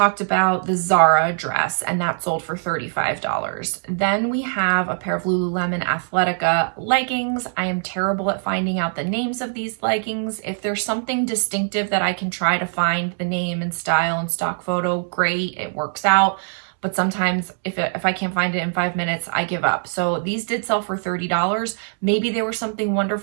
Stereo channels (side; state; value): left; silent; digital silence